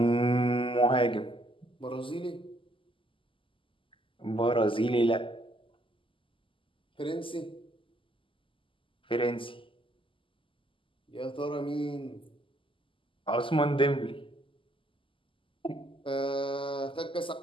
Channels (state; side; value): late; right; 0.25 ms